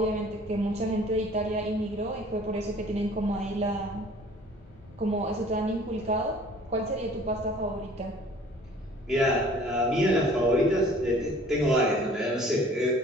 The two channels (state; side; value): normal; both; correlation 0.51